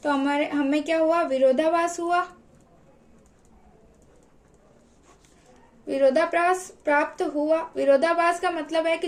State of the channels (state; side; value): identical; both; correlation 1.00